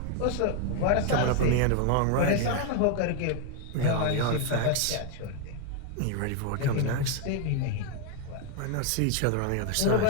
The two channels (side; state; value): both; different; correlation 0.01